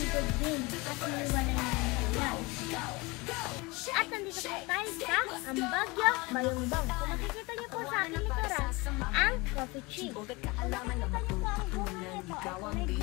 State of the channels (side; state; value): right; quieter; 24.3 dB